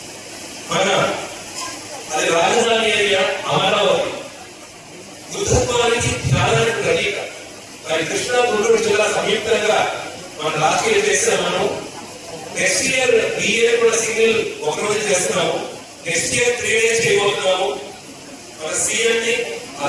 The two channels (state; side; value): identical; both; correlation 1.00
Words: మన అది రాజధాని ఏరియా అమరావతి బుద్ధత్వానికి ధ్యానానికి ప్రతీక. మరి కృష్ణా గుంటూరు జిల్లా సంయుక్తంగా మనం లాస్ట్ ఇయర్ చేస్తాం. మనం నెక్స్ట్ ఇయర్ ఈ ఇయర్ కూడా సింగిల్ ఒకరోజు చేస్తున్నాము. నెక్స్ట్ ఇయర్ 3 days చేయబోతున్నాము. మన సీఎం ని